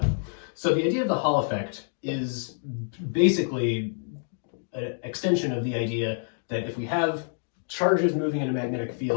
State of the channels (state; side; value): silent; right; digital silence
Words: So the idea of the Hall effect is basically an extension of the idea that if we have charges moving in a magnetic